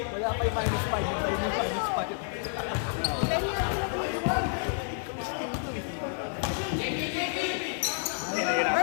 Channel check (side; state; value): right; silent; 58 dB below the other